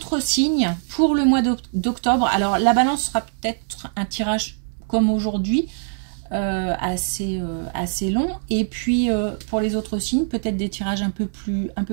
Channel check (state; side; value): silent; left; 63 dB below the other